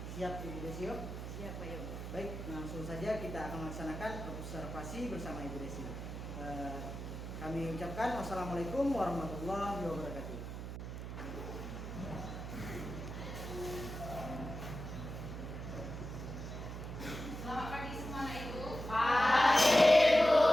siap Ibu Desio? siapa ya? Baik, langsung saja kita akan melaksanakan observasi bersama Ibu Desio. Kami ucapkan wassalamualaikum warahmatullahi wabarakatuh. Selamat pagi semua anak ibu. Pagi ibu.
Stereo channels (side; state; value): right; noise; hum, 7 dB below the sound